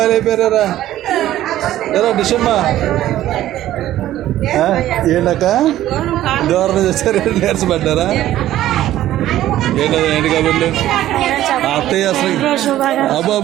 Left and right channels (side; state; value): left; quieter; 13.6 dB